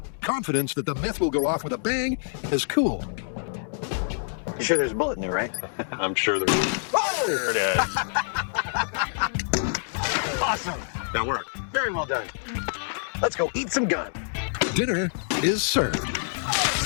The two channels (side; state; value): right; silent; digital silence